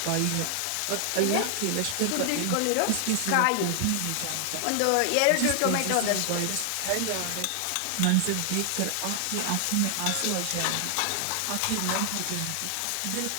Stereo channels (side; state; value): both; different; correlation 0.00